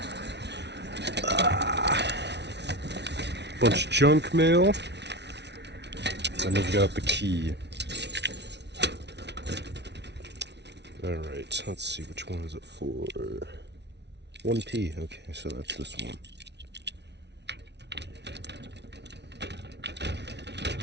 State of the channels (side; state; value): left; late; 0.50 ms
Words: Bunch of junk mail. Then we've got the key. Alright, let's see, which one is it for? 1P, okay, so that's this one.